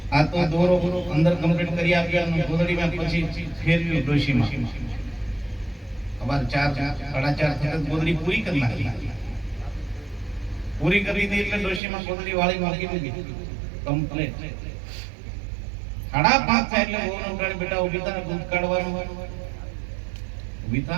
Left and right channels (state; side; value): drops out; left; at 11.8 s